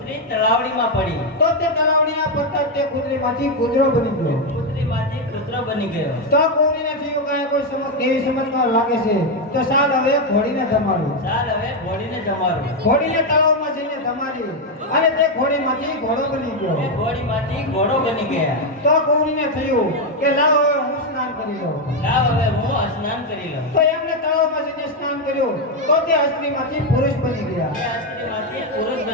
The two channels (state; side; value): normal; both; correlation 0.05